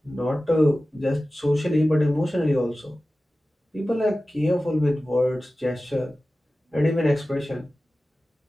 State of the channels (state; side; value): normal; both; correlation 0.96